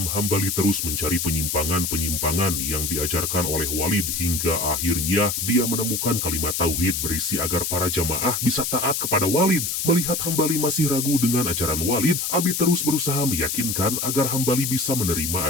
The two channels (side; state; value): left; noise; hiss, 1 dB below the sound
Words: Hambali terus mencari penyimpangan-penyimpangan yang diajarkan oleh Walid hingga akhirnya dia menemukan kalimat tauhid berisi agar para jamaah bisa taat kepada Walid. Melihat Hambali masih ragu dengan ajaran Walid, Abi terus berusaha meyakinkan agar Hambali bisa menerima